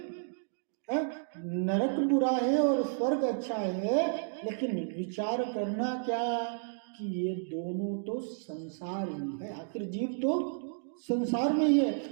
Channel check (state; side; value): silent; left; digital silence